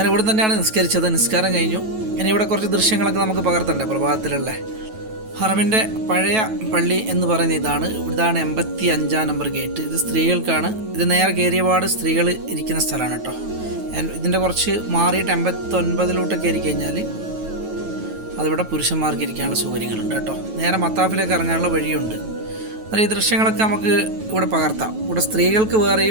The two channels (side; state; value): left; late; 9.2 ms